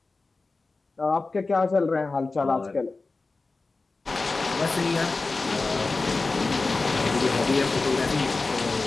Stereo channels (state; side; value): quieter; right; 3.7 dB